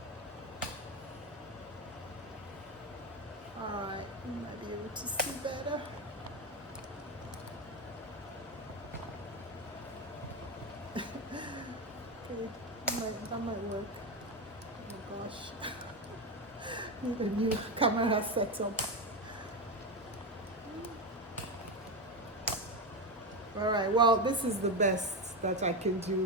Alright, you might be able to see better. Okay, that might work. Oh my gosh. Need a new camera setup. Alright, well, this is the best that I can do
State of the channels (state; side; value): normal; both; correlation 0.14